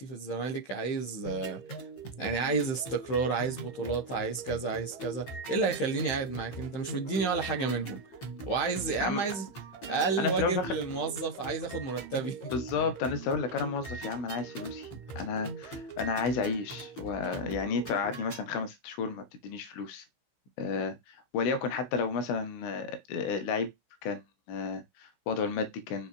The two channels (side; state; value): right; late; 16 ms